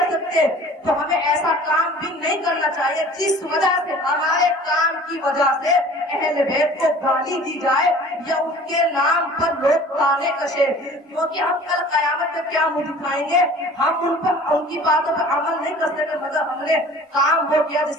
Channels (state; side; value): normal; both; correlation 0.46